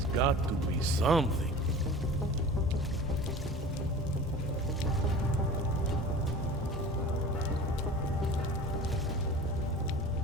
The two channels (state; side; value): normal; both; correlation 0.38